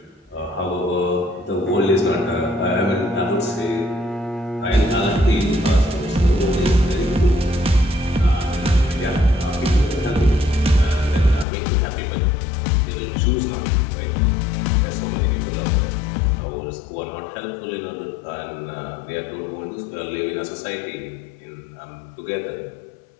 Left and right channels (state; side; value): drops out; right; at 11.5 s